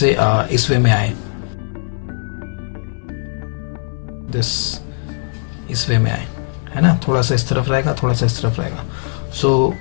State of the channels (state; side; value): silent; right; 67 dB below the other